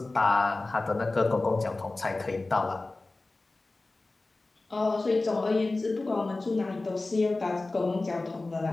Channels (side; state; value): right; quieter; 3.2 dB